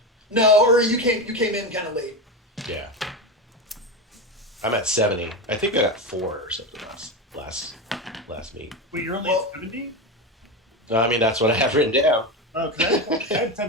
No, or you came in kind of late. Yeah. I'm at 70. I think I got 4 or something last meet. Wait, you're only at 70? No, I mean, that's what I have written down. Okay. I have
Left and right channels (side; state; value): both; normal; correlation 0.18